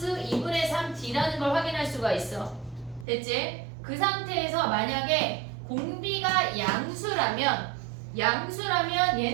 2분의 3 D라는 걸 확인할 수가 있어. 됐지? 그 상태에서 만약에 공비가 양수라면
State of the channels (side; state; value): left; drops out; at 3.1 s